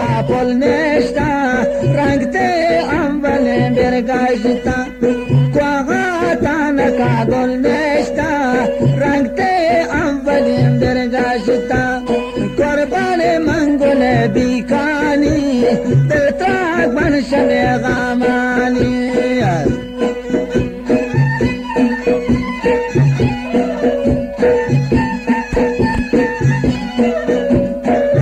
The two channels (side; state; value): both; identical; correlation 1.00